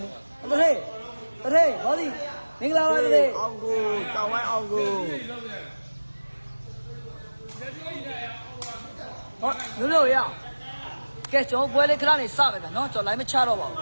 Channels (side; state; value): both; inverted; correlation -1.00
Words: လေးတထေဘောလီမင်္ဂလာပါတထေအောင်ကိုကြောင်းဝိုင်းအောင်ကိုဟောလို့ရကဲကျွန်တော်ပွဲလေးခဏနေစမယ်ဗျာနော်ကျွန်တော် line မချတော့ပါဘူ